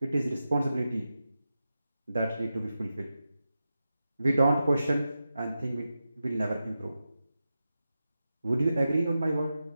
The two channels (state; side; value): inverted; both; correlation -0.91